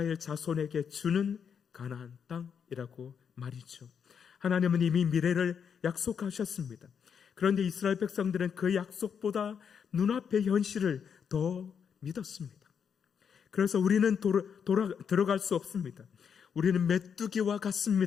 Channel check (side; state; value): right; quieter; 7.1 dB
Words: 자손에게 주는 가나안 땅이라고 말이죠. 하나님은 이미 미래를 약속하셨습니다. 그런데 이스라엘 백성들은 그 약속보다 눈앞의 현실을 더 믿었습니다. 그래서 우리는 들어갈 수 없습니다. 우리는 메뚜기와